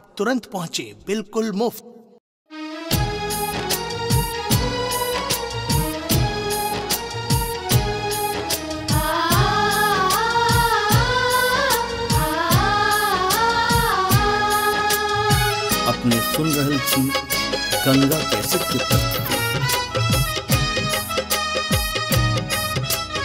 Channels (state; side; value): identical; both; correlation 1.00